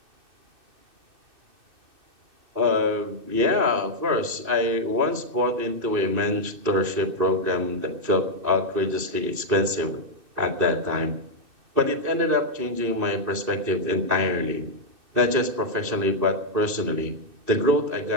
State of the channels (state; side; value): late; left; 2.6 ms